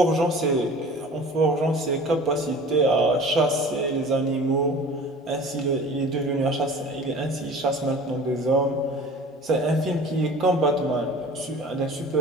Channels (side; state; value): both; normal; correlation 0.43